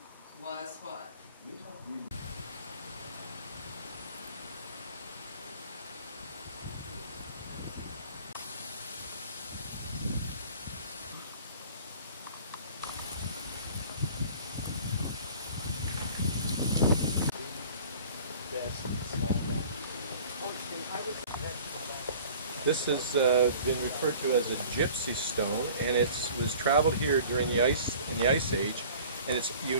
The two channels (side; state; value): both; inverted; correlation -0.46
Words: was what? This has been referred to as a gypsy stone, and it was traveled here during the ice age, and it's